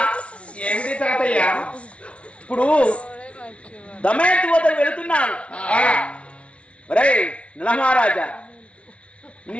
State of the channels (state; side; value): late; right; 0.061 ms